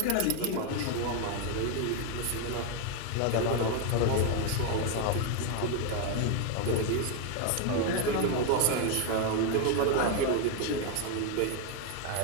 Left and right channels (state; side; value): different; both; correlation 0.01